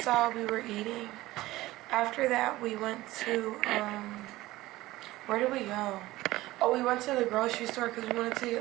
saw, we were eating. After that, we went to, where did we go? Oh, we went to the grocery store because we wanted to get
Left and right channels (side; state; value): left; quieter; 17.7 dB